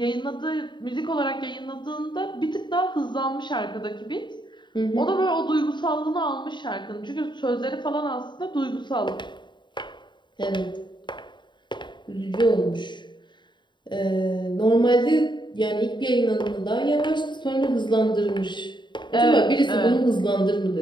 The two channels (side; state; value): right; late; 0.22 ms